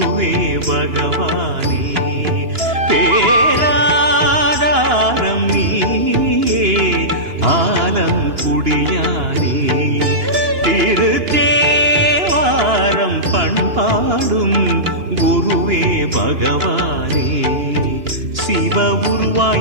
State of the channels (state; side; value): late; left; 2.9 ms